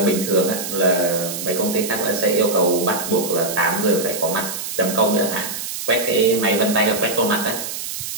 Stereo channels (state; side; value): noise; right; hiss, 6 dB below the sound